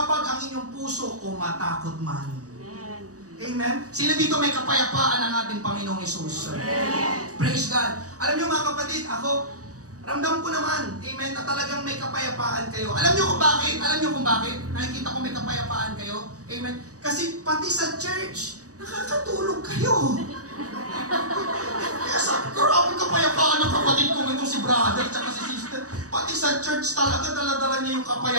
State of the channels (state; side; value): late; left; 0.66 ms